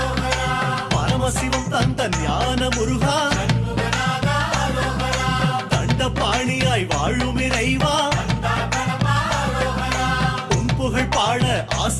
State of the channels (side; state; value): both; identical; correlation 1.00